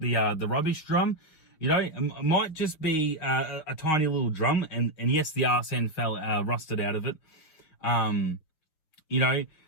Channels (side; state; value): right; late; 6.6 ms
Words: rubbish drum. It might just be a tiny little drum, and yes, the arse end fell rusted out of it.